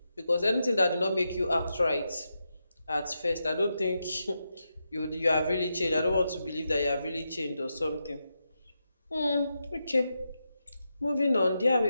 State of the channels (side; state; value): both; inverted; correlation -0.86